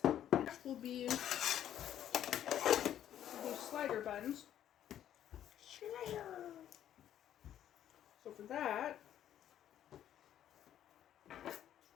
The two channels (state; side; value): quieter; right; 10.9 dB